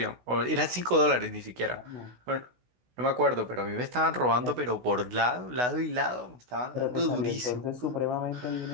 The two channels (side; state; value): left; late; 16 ms